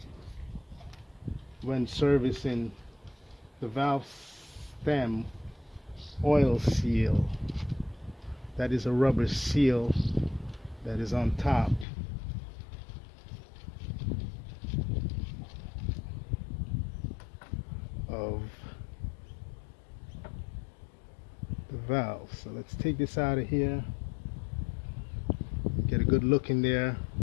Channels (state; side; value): drops out; right; at 11.9 s